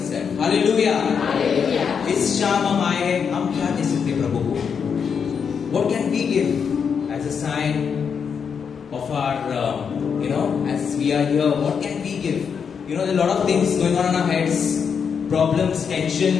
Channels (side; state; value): right; quieter; 6.6 dB